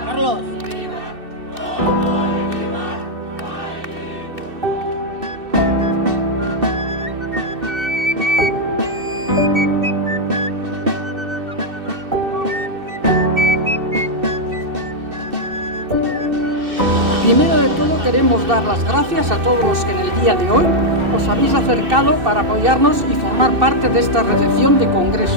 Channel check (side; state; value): left; late; 2.6 ms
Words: Carlos. Primero de todo queremos dar las gracias a todos los que en el día de hoy os habéis acercado para apoyarnos y formar parte de esta recepción de